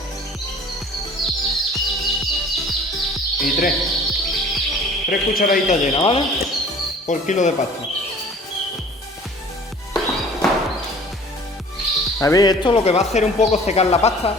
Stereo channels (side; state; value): both; normal; correlation 0.48